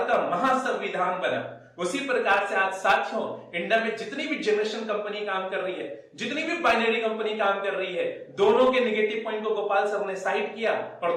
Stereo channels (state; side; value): identical; both; correlation 1.00